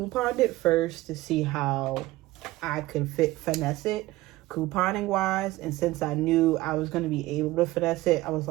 it first to see how I could finesse it couponing wise. And since I knew I was going to be able to finesse it, I was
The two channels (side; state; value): left; quieter; 18.0 dB